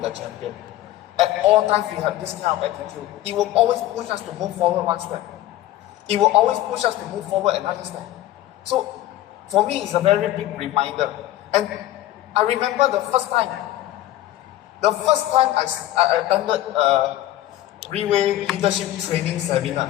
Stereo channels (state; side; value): quieter; right; 14.3 dB